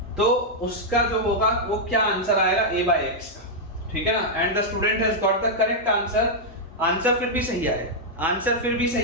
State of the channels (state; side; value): normal; both; correlation -0.04